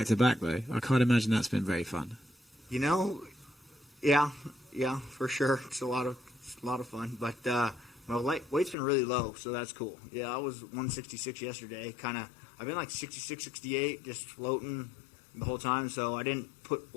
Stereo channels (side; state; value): right; drops out; at 8.8 s